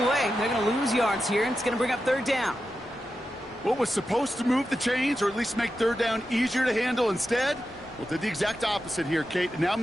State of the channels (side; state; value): both; normal; correlation 0.90